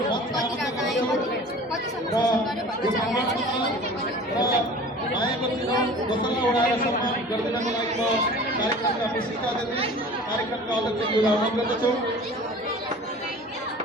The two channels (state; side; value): normal; both; correlation 0.42